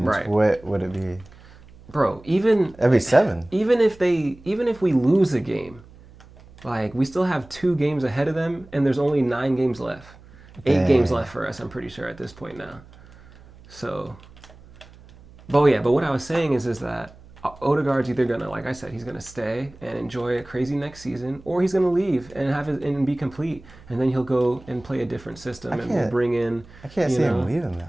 Right. What would it be? Bro, it'd be 7. Even if we lose a game, like we still have 2 games ahead of them, and there's only 9 games left. 8 games left for us, I'm pretty sure, at this point now. So, but what I was saying is that Odegaard's either gonna, like I said, he's gonna stay and enjoy a crazy next season, or he's gonna leave and be complete, and then he'll go and play a different system, and we'll bring in. I can't see him leaving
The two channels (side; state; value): right; noise; hum, 23 dB below the sound